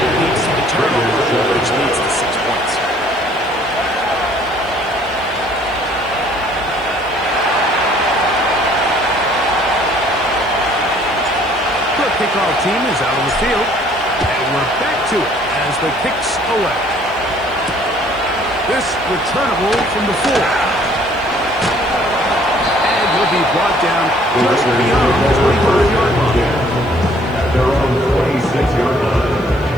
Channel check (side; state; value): left; noise; hiss, 29 dB below the sound